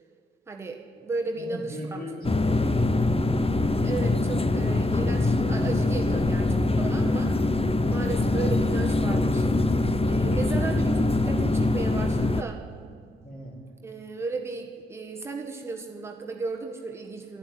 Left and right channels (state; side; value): normal; both; correlation 0.82